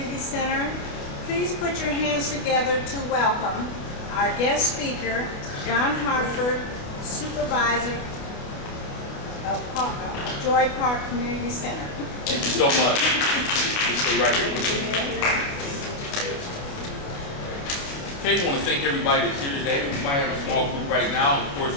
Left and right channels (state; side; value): late; right; 29 ms